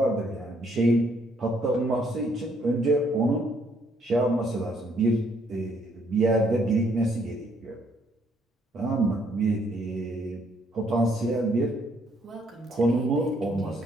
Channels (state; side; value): normal; both; correlation 0.68